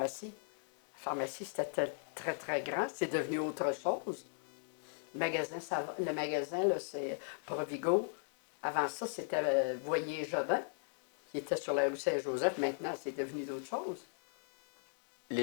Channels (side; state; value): right; silent; digital silence